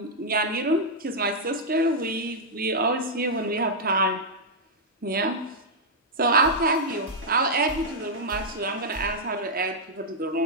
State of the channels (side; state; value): both; normal; correlation -0.06